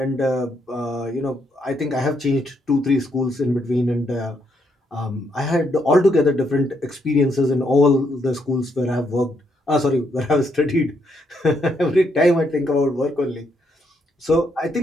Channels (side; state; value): both; normal; correlation 0.75